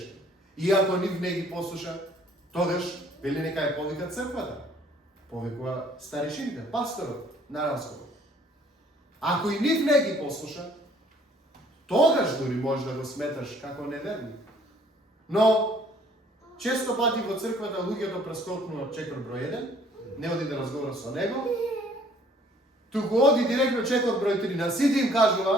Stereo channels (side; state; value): both; normal; correlation 0.59